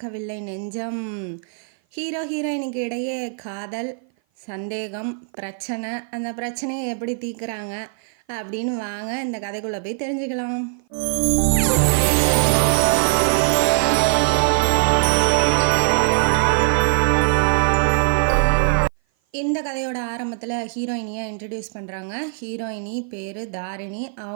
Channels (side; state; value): left; silent; 56 dB below the other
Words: நெஞ்சம். ஹீரோ ஹீரோயினுக்கு இடையே காதல், சந்தேகம், பிரச்சனை. அந்த பிரச்சனையை எப்படி தீர்க்குறாங்க அப்படின்னு வாங்க இந்த கதைக்குள்ளே போய் தெரிஞ்சுக்கலாம். இந்த கதையோட ஆரம்பத்தில் ஹீரோயினியை இன்ட்ரடியூஸ் பண்ணுறாங்க. ஹீரோயினி பேர் தாரிணி.